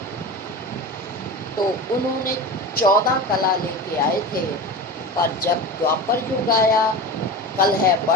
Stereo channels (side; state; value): both; normal; correlation 0.28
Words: तो उन्होंने 14 कला लेके आए थे। पर जब द्वापर युग आया, कलह